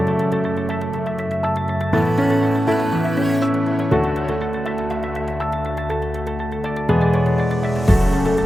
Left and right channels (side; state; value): both; normal; correlation 0.91